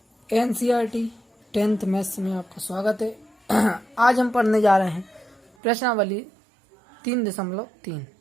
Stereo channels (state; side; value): drops out; left; at 5.5 s